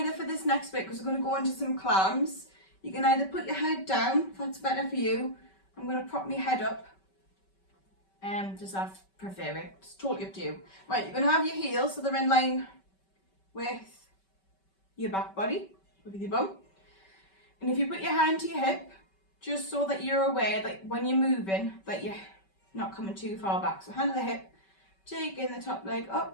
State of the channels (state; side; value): late; right; 5.2 ms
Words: for this next bit, because we're going to go into some clams, you can either put your head down, if that's better for you. I'm going to prop my head up, just I prefer it, it's totally up to you. Right, you're going to have your heels, so they're in line with your back body, with your bum. And if you put your hand to your hip, just so that you're aware that when you're moving, that you're not coming too far back. So hand to the hip, take in the top leg